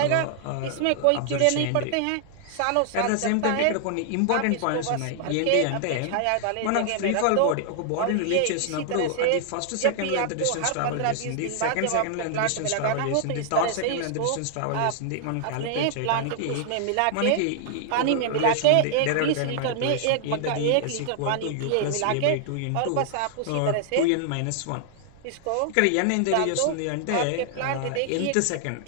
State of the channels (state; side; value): different; both; correlation -0.01